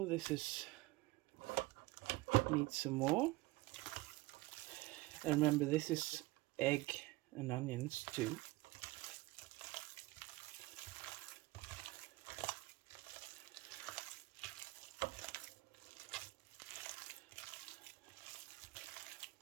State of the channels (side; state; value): left; quieter; 20.6 dB